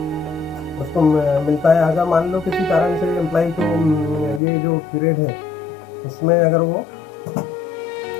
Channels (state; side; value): drops out; right; at 4.4 s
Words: उसको मिलता है। अगर मान लो किसी कारण से employ को ये जो पीरियड है उसमें अगर वो